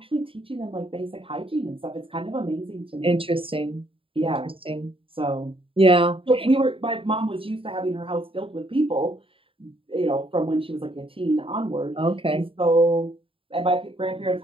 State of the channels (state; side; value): late; left; 0.26 ms